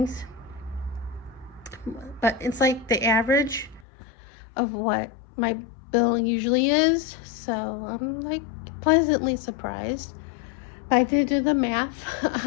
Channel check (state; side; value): drops out; right; at 3.9 s